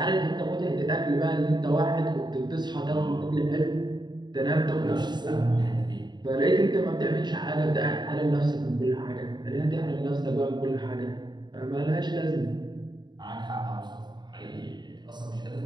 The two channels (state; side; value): late; left; 0.21 ms